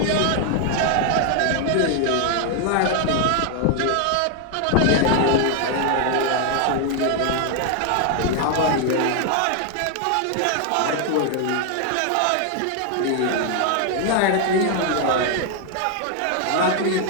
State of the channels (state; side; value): different; both; correlation 0.00